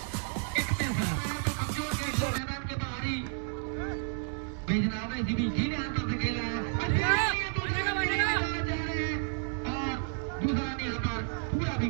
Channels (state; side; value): silent; left; 56 dB below the other